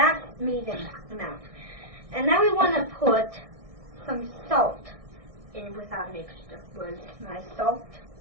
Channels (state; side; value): late; left; 1.6 ms